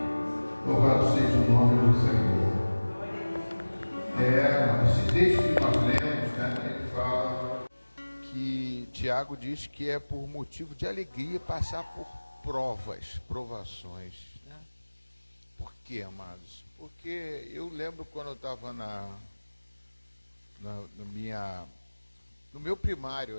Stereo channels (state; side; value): inverted; both; correlation -1.00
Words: Louvado seja o nome do Senhor. Esse texto que nós lemos, né, ele fala que Tiago diz que é por motivo de alegria passar por provações. Né? Por quê, amados? Porque eu lembro quando eu estava no meu primário